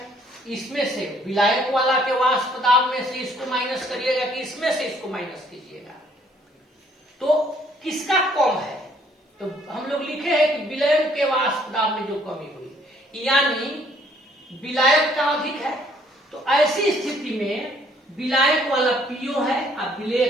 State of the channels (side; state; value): both; normal; correlation 0.63